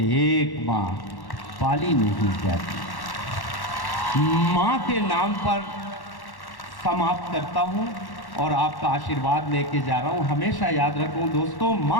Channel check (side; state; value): right; late; 1.1 ms